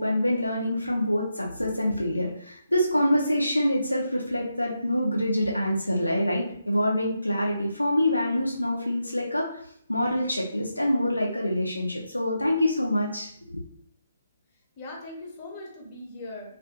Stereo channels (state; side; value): inverted; both; correlation -0.86